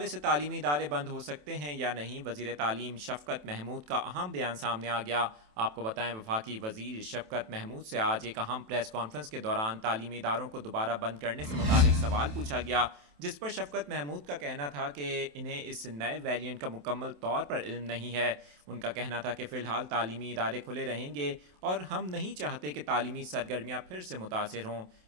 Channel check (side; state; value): left; late; 27 ms